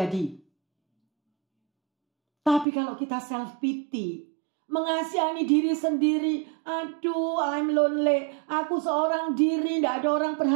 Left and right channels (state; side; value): drops out; left; at 2.7 s